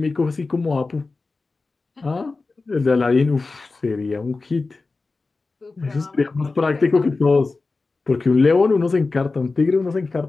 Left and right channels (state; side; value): quieter; right; 3.8 dB